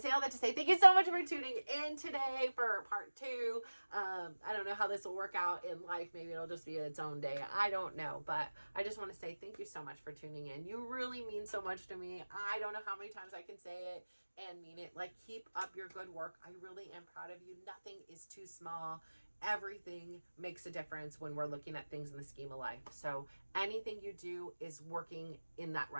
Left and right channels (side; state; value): both; inverted; correlation -1.00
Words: all that to say thank you so much for tuning in today for part 2. I don't know how this will work out in life. Maybe it'll just be its own day. I don't know, but I just want to say thank you so much for tuning in. You really mean so much to me. I don't know how many times I can say it and mean it. Like, keep up your good work. I really am proud of you. Nothing is too small. Everything makes a difference when we're looking at things in the scheme of life. So anything you do is working in that